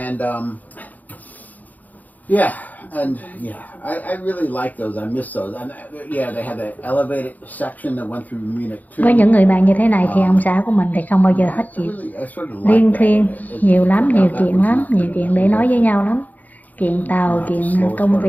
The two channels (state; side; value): late; right; 0.080 ms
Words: Yeah, and yeah, I really like those. I miss those. And yeah, they had that elevated section that went through Munich too. Với những người bạn như thế này thì ông xã của mình thì không bao giờ hết chuyện. I sort of Liên like that. thuyên, nhiều lắm, nhiều That chuyện was lắm, not nhiều chuyện để nói với nhau lắm. Chuyện tàu, chuyện công